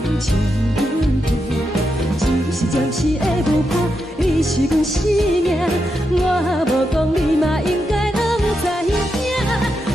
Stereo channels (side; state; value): both; normal; correlation 0.85